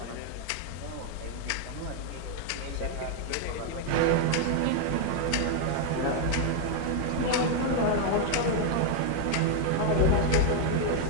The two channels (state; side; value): different; both; correlation 0.00